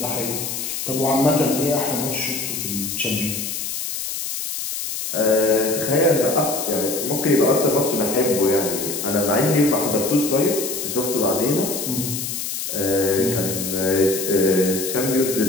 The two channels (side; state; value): left; noise; hiss, 4 dB below the sound